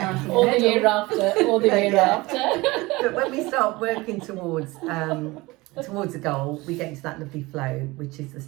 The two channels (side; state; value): left; quieter; 21.8 dB